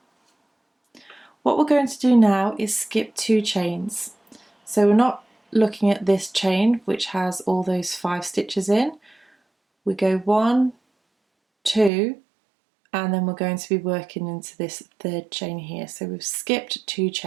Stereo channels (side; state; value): left; drops out; at 11.9 s